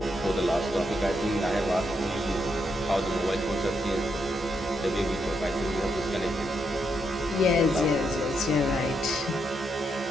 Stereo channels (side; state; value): both; normal; correlation 0.80